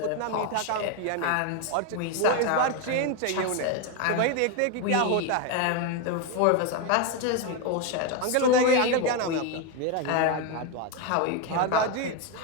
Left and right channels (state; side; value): different; both; correlation 0.02